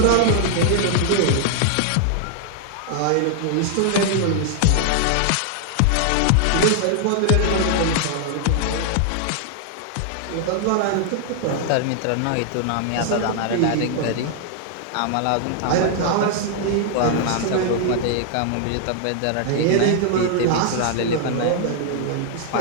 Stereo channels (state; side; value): different; both; correlation 0.00